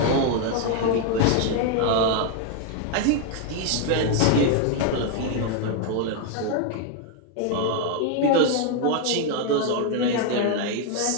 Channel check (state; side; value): different; both; correlation 0.01